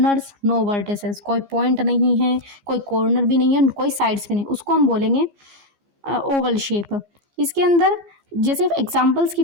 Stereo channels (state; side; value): late; left; 15 ms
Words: नो वर्टिसेस, कोई पॉइंट नहीं है, कोई कॉर्नर भी नहीं है, कोई साइड्स भी नहीं, उसको हम बोलेंगे ओवल शेप। इसके अंदर जैसे एग्जांपल्स की